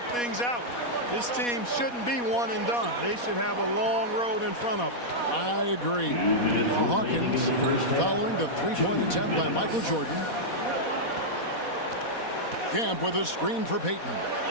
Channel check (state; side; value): late; right; 4.2 ms